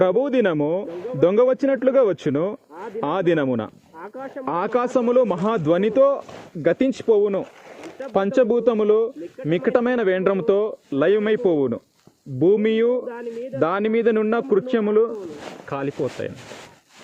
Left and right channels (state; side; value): identical; both; correlation 1.00